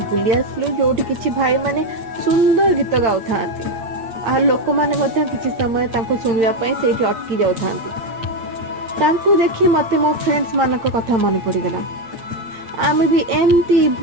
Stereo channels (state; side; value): late; left; 8.6 ms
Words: बुली आसलु जोठी किछि भाई माने सुंदर गीत गाउ थांती। आ लोक माने मते किछि समय तांको सुनिया पई सेठी अटकी जाउ थांती। तांको देखि मते मो फ्रेंड्स मानक कथा मन पड़ी गला। आम भी एमती